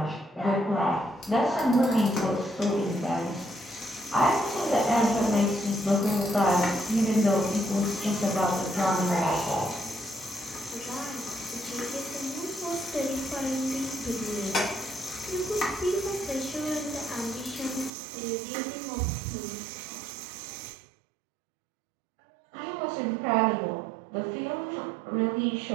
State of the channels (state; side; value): drops out; left; at 17.9 s